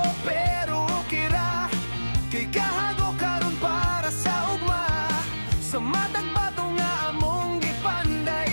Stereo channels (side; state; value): both; inverted; correlation -1.00